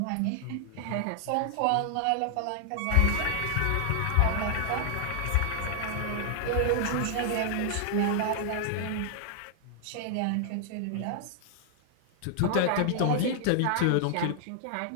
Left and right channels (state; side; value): different; both; correlation 0.00